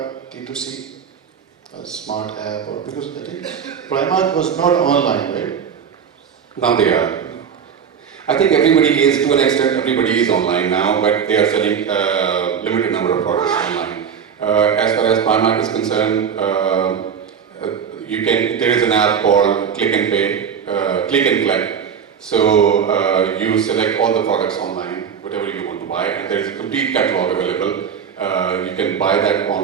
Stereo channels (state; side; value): quieter; left; 7.3 dB